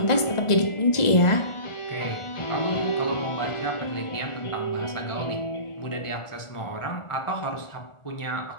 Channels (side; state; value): right; late; 1.4 ms